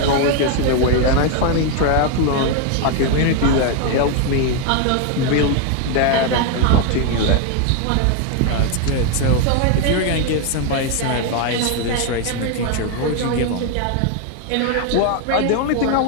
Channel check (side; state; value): both; different; correlation 0.01